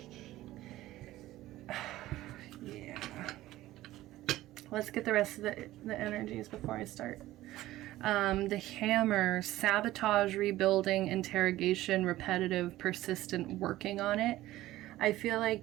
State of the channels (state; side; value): quieter; left; 15.8 dB